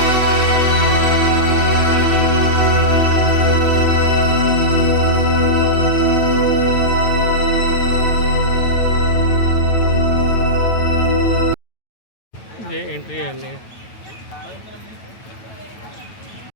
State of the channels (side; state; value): right; late; 9.1 ms